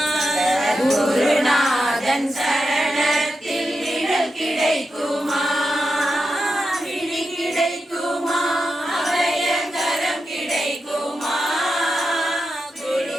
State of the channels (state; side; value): normal; both; correlation 0.88